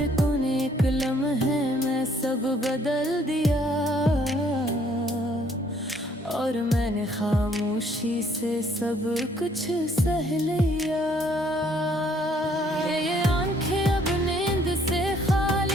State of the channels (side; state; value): both; normal; correlation 0.64